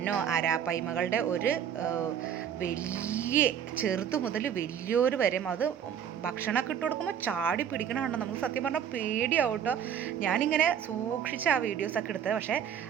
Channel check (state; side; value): quieter; left; 8.8 dB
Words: അരാപ്പൈമകളുടെ ഒരു വലിയ ചെറുതു മുതൽ വലിയൊരു വരെ അത് ഭക്ഷണമൊക്കെ ഇട്ട് കൊടുക്കുമ്പോൾ ചാടി പിടിക്കണമുണ്ടോ നമുക്ക് സത്യം പറഞ്ഞാൽ പേടിയാവും കേട്ടോ. ഞാനിങ്ങനെ സൂക്ഷിച്ച് ആ വീഡിയോസൊക്കെ എടുത്തത്. പക്ഷേ